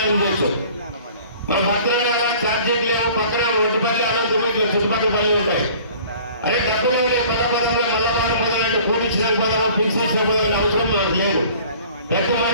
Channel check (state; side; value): inverted; both; correlation -0.49